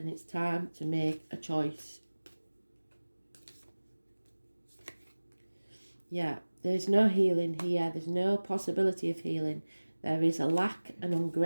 it's time to make a choice. Yeah, there's no healing here. There's no possibility of healing. There is a lack and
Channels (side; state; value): both; inverted; correlation -1.00